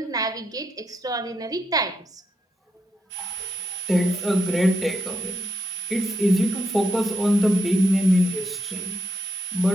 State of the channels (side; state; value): both; normal; correlation 0.80